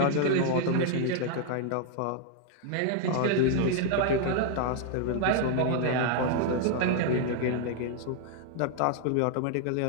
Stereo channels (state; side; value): different; both; correlation 0.00